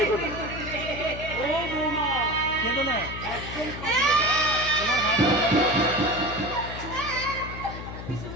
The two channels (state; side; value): noise; left; hum, 10 dB below the sound